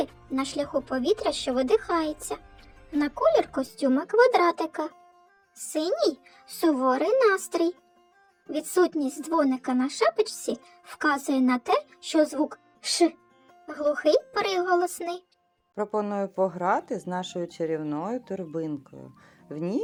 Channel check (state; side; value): identical; both; correlation 1.00